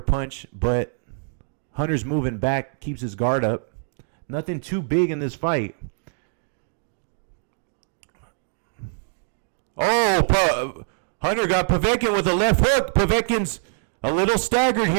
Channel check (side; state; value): left; silent; digital silence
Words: punch, but Hunter's moving back, keeps his guard up. Nothing too big in this fight. Oh, Hunter got Povetkin with a left hook. Povetkin's a little staggered